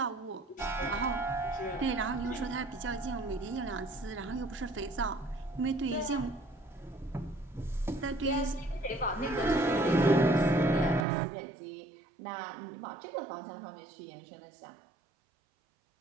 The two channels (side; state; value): left; drops out; at 11.1 s